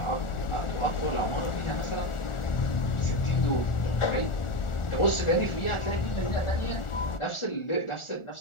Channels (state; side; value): late; right; 1.4 ms